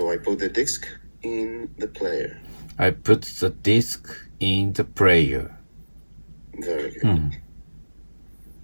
I put the disc in the player. I put the disc in the player. Very good.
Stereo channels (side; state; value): both; inverted; correlation -1.00